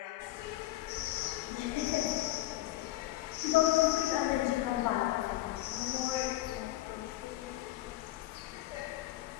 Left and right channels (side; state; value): right; quieter; 16.5 dB